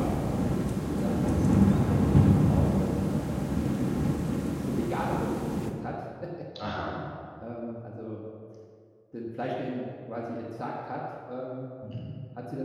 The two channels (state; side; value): identical; both; correlation 1.00